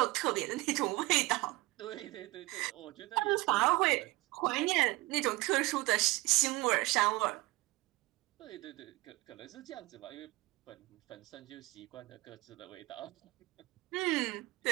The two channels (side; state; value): left; quieter; 20.6 dB